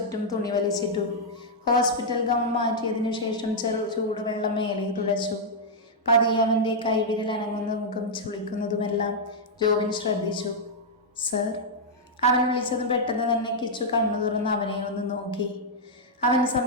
തുണി വലിച്ചിട്ടു. ഹോസ്പിറ്റൽ ഗൗൺ മാറ്റിയതിനു ശേഷം ചൂടുവെള്ളം മേലെ തുടച്ചു. പതിയെ അവൻ്റെ കൈവിരൽ അനങ്ങുന്ന മുഖം ചുളിക്കുന്നതുമെല്ലാം ജോബിൻ ശ്രദ്ധിച്ചു. സർ. അവൻ വിളിച്ചതും പെട്ടെന്ന് തന്നെ കിച്ചു കണ്ണു തുറന്ന് അവനെ ഒന്ന് നോക്കി. അവൻ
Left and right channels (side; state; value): both; normal; correlation -0.05